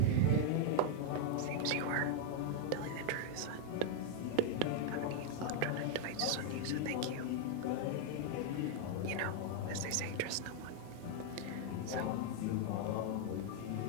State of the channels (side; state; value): both; different; correlation 0.00